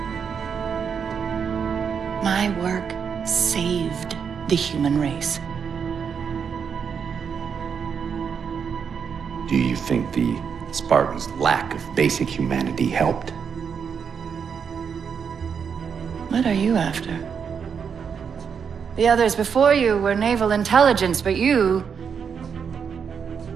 My work saved the human race. Do you think the Spartans' lack of basic humanity helped? What are you after? The others before you were naval intelligence, but you're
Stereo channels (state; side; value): quieter; left; 6.8 dB